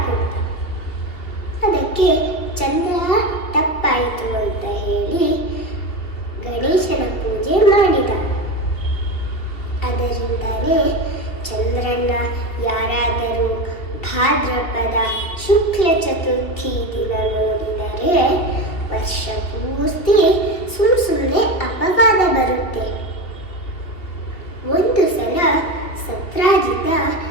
ಕೊಟ್ಟ. ಅದಕ್ಕೆ ಚಂದ್ರ ತಪ್ಪಾಯಿತು ಅಂತ ಹೇಳಿ ಗಣೇಶನ ಪೂಜೆ ಮಾಡಿದ. ಅದರಿಂದಲೇ ಚಂದ್ರನ ಯಾರಾದರೂ ಭಾದ್ರಪದ ಶುಕ್ಲ ಚತುರ್ಥಿ ದಿನ ನೋಡಿದರೆ ವರ್ಷ ಪೂರ್ತಿ ಸುಮ್ಮನೆ ಅಪವಾದ ಬರುತ್ತೆ. ಒಂದು ಸಲ ಸತ್ರಾಜಿತ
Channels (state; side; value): late; right; 2.7 ms